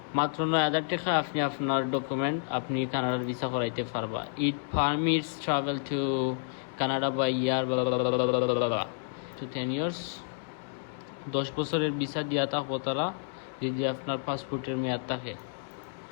মাত্র 9,000 টাকা আপনি আপনার ডকুমেন্ট আপনি কানাডার ভিসা করাইতে পারবা it permits travel to Canada by year to 10 years 10 বছরের ভিসা দিয়া থাকবো তারা যদি আপনার পাসপোর্টের মেয়াদ থাকে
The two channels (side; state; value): right; silent; digital silence